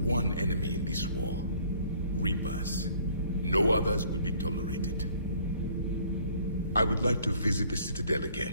enemy in this war. Reapers. No others will be tolerated. I would like to visit the Citadel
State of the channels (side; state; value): both; inverted; correlation -0.58